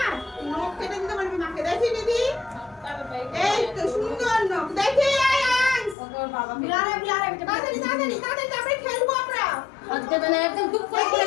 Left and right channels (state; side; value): drops out; right; at 6.0 s